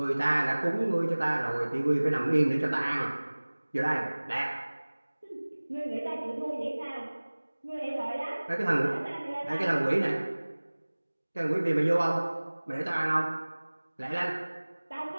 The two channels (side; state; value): both; inverted; correlation -1.00